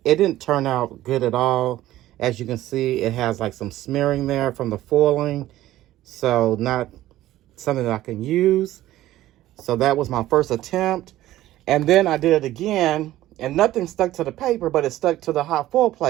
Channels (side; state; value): left; quieter; 14.8 dB